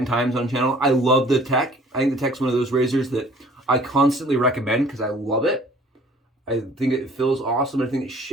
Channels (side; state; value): both; normal; correlation 0.53